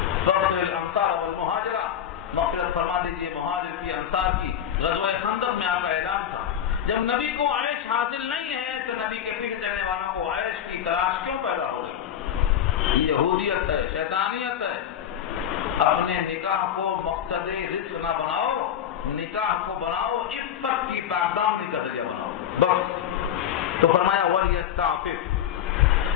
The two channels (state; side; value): quieter; right; 9.7 dB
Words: فاغفر الانصار والمہاجرہ، مغفرت فرما دیجئے مہاجر کی، انصار کی۔ غزوہ خندق میں آپ کا اعلان تھا، جب نبی کو عیش حاصل نہیں ہے تو نبی کے پیچھے چلنے والوں کو عیش کی تلاش کیوں پیدا ہو گئی؟ یہ یہودیت ہے، شیطانیت ہے۔ اپنے نکاح کو مقصد رزق نہ بناؤ، نکاح کو بناؤ عفت کی پاکدامنی کا ذریعہ بناؤ، بس۔ تو فرمایا وَلْيَسْتَعْفِفْ،